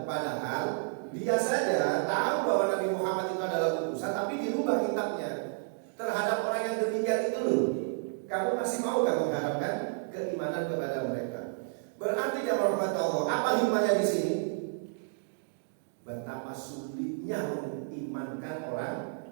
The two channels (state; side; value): silent; left; digital silence